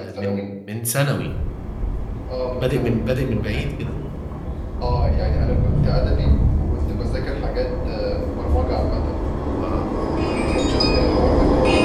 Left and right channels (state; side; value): identical; both; correlation 1.00